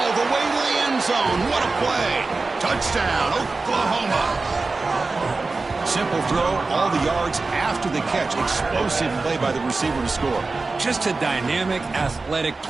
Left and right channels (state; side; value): quieter; left; 3.7 dB